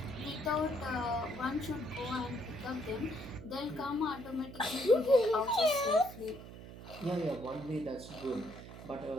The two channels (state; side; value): noise; right; hum, 14 dB below the sound